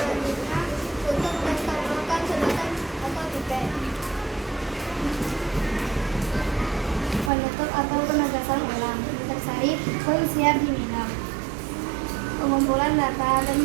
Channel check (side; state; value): left; drops out; at 7.3 s